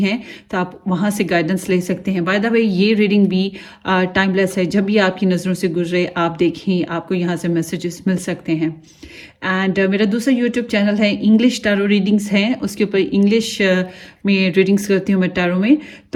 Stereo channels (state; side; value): identical; both; correlation 1.00